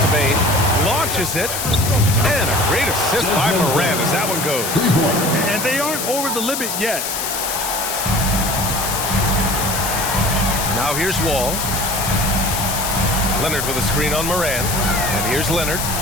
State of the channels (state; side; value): noise; left; hiss, 3 dB below the sound